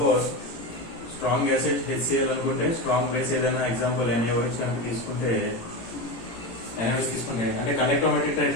strong acid HCl అనుకుంటే strong base ఏదైనా example NaOH కనుక తీసుకుంటే NaOH తీసుకుంటే అంటే conductometric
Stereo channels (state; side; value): late; right; 17 ms